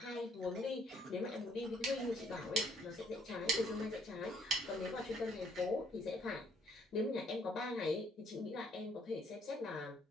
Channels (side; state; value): both; normal; correlation 0.65